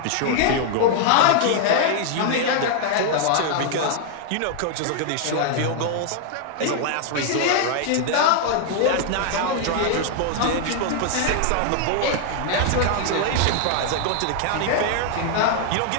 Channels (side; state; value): both; different; correlation 0.00